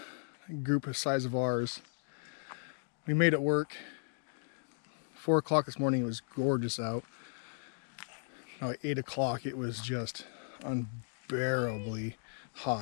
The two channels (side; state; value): right; silent; digital silence